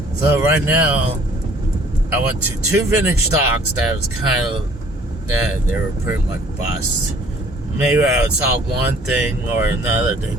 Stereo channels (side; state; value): both; normal; correlation 0.56